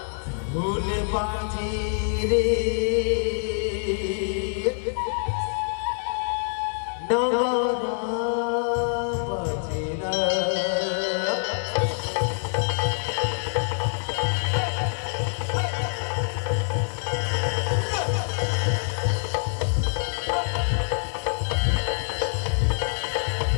ढोल बाजे रे नगारा बाजे ना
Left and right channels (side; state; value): right; silent; 61 dB below the other